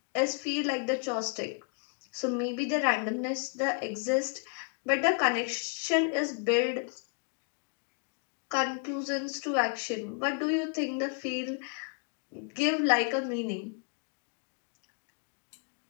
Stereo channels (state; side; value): quieter; right; 39.5 dB